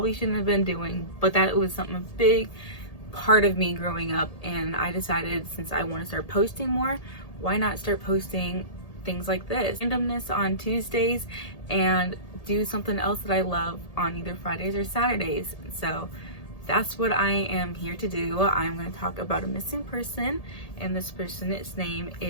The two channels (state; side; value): late; right; 1.8 ms